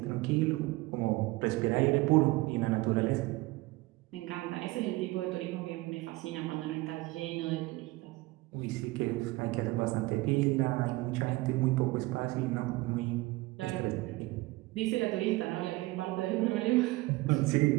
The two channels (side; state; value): left; quieter; 20.9 dB